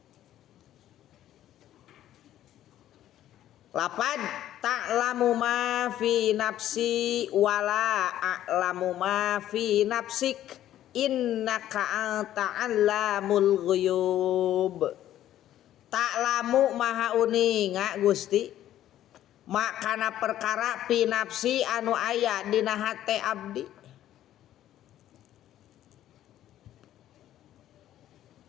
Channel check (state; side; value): quieter; right; 12.4 dB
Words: Lapad ta'lamu ma fi nafsi wala a'lamu ma fi nafsik innaka ta'allamul ghuyub. Ta'lamu maha uninga Gusti makana perkara pinapsi anu aya dina hate abdi.